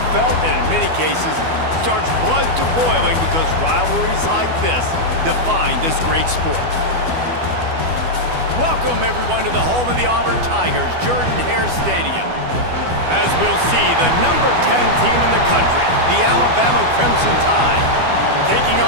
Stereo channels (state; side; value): late; left; 12 ms